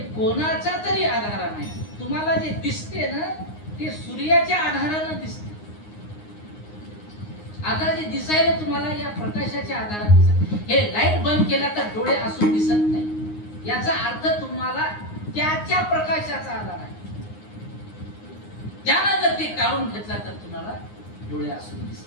कोणाच्या तरी आधारानं आहे. तुम्हाला जे दिसते ना ते सूर्याच्या आधारानं दिसते. आता जे दिसायला तुम्हाला या प्रकाशाच्या आधाराने दिसत. हे लाईट बंद केला तर डोळे असून दिसत नाही. याचा अर्थ तुम्हाला त्याच्या प्रकाशाचा आधार आहे. त्यानं जर ते काढून घेतला तर तुम्हाला डोळे असून दिसणार.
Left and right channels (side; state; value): right; late; 9.6 ms